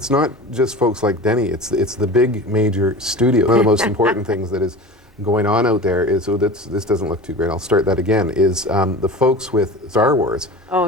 not just folks like Denny. It's the big major studio. One of the most important things that is going on out there is, so this doesn't look too great. I'll start that again. Is the folks with Star Wars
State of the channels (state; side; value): normal; both; correlation 0.33